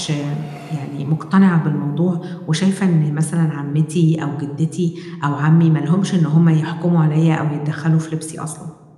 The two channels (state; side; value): identical; both; correlation 1.00